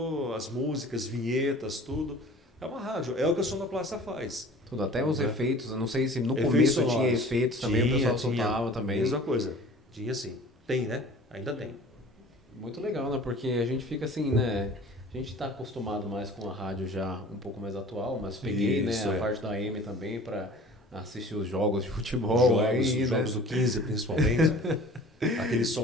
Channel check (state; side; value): normal; both; correlation 0.46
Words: as músicas, vinhetas, tudo. É uma rádio, é o que a sonoplasta faz. Tudo, até os efeitos, eu não sei se no começo tinha efeitos também, o pessoal soltava também. Mesma coisa, tinha sim. Tem, né? Ainda tem. Muito legal, né? Porque a gente fica assim, né? A gente está acostumado mais com a rádio já um pouco mais atual, mas peguei a parte da AM também para assistir os jogos de futebol. Jogos do 15 principalmente. Aquele